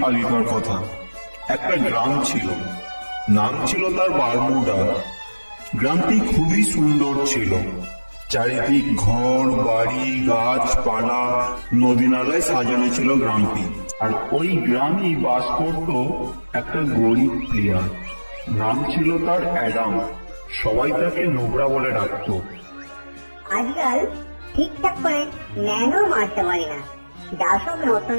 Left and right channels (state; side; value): inverted; both; correlation -1.00